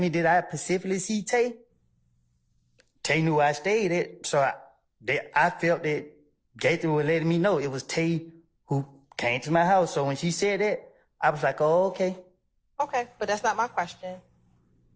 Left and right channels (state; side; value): identical; both; correlation 1.00